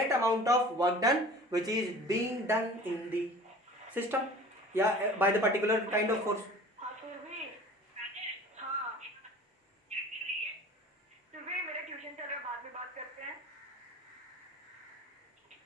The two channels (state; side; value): normal; both; correlation 0.42